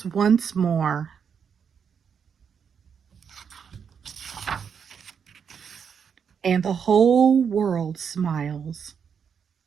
once more. And the whole world smiles.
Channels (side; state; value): left; quieter; 7.0 dB